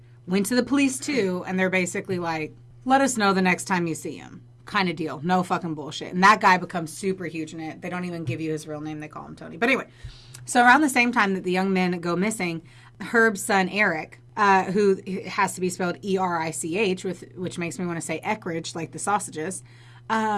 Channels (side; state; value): both; identical; correlation 1.00